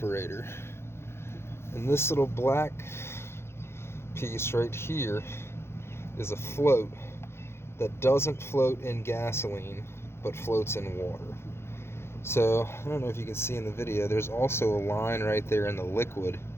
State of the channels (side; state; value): right; late; 0.12 ms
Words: And this little black piece right here is a float that doesn't float in gasoline, but floats in water. So, I don't know if you can see in the video, there's also a line right there in the liquid.